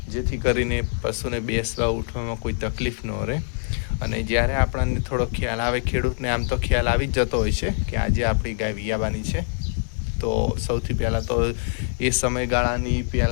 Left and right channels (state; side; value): silent; right; digital silence